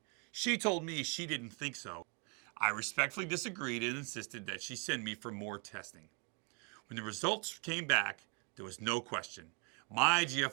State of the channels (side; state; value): left; quieter; 34.2 dB